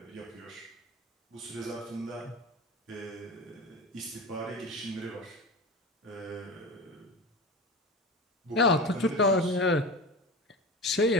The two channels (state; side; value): normal; both; correlation 0.29